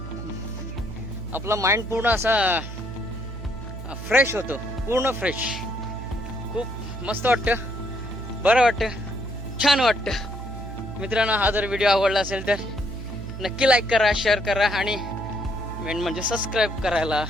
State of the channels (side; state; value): right; noise; hum, 10 dB below the sound